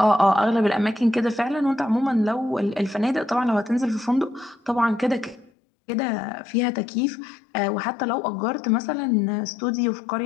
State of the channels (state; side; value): drops out; right; at 5.5 s